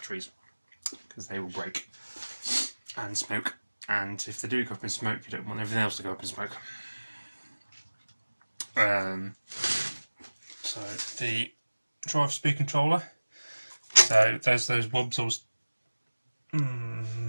because they will break and smoke. And if they do go up in smoke, you don't want everything else to go up in smoke. So the drive speed controller. So there's those wubs.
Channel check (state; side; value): inverted; both; correlation -1.00